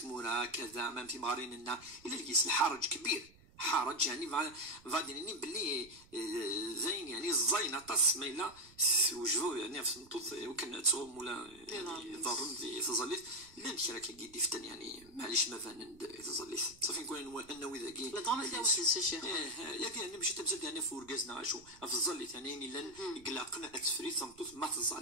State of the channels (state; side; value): noise; right; rumble, 25 dB below the sound